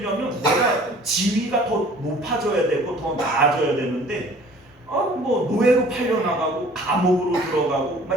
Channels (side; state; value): both; normal; correlation 0.51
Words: 내가 지위가 더 높아져야 되고 더 나아져야 되는데, 뭐 노예로 팔려나가고 감옥으로 들어가고